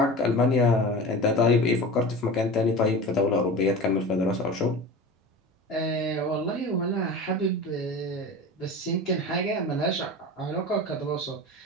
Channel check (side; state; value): both; normal; correlation 0.32